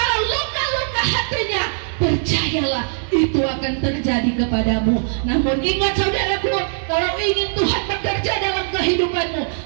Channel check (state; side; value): silent; left; digital silence